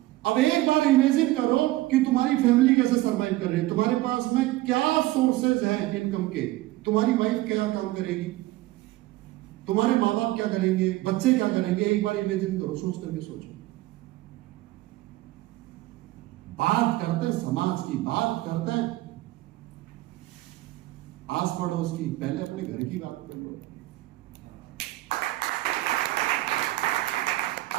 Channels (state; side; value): quieter; left; 17.7 dB